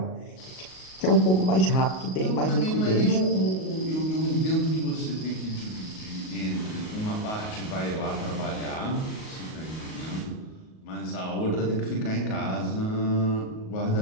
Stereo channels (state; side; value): late; right; 38 ms